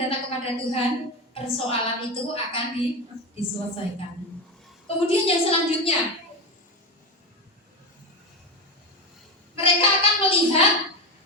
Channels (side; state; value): both; normal; correlation 0.17